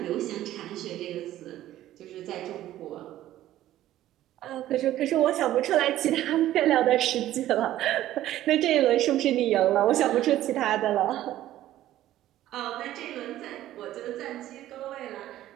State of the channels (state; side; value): quieter; left; 13.7 dB